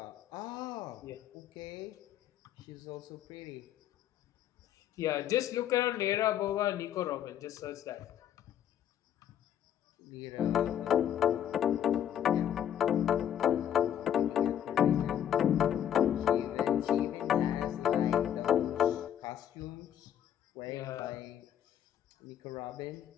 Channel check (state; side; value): quieter; right; 10.1 dB